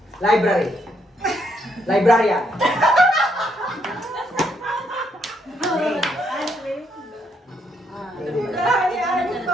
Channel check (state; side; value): normal; both; correlation 0.74